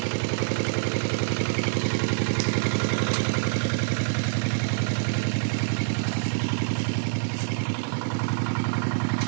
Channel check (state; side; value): silent; left; digital silence